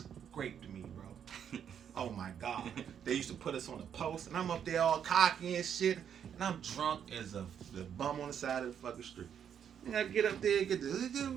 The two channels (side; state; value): left; quieter; 8.5 dB